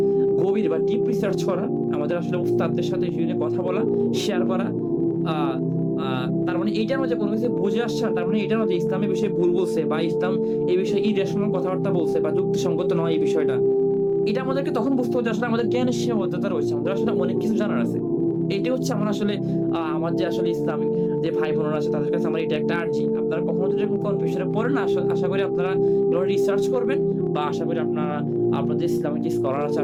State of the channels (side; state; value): both; identical; correlation 1.00